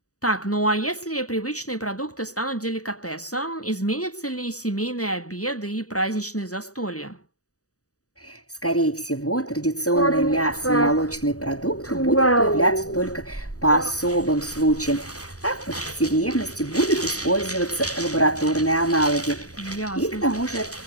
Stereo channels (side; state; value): right; late; 0.66 ms